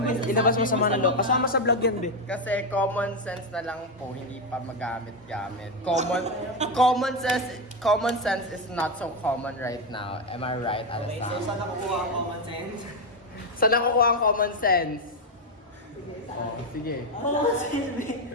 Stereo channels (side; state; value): both; normal; correlation 0.07